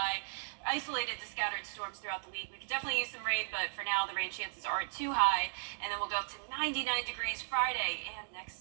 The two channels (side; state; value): left; silent; digital silence